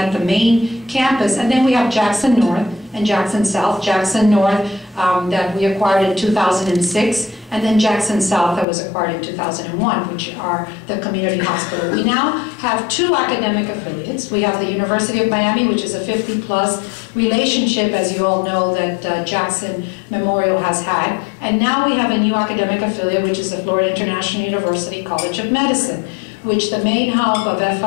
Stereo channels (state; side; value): drops out; right; at 8.7 s